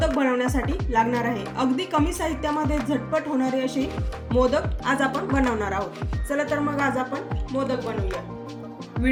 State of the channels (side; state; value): both; identical; correlation 1.00